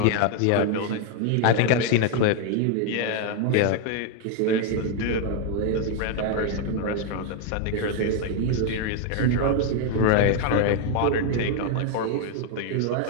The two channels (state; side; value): different; both; correlation 0.01